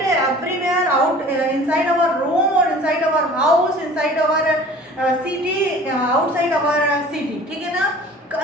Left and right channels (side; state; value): both; normal; correlation 0.46